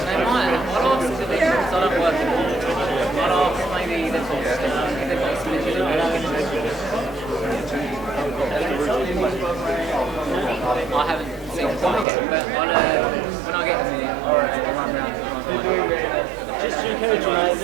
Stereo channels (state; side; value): drops out; left; at 12.1 s